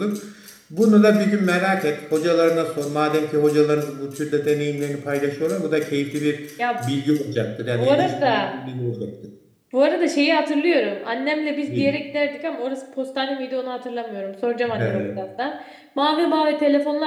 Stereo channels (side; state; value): both; identical; correlation 1.00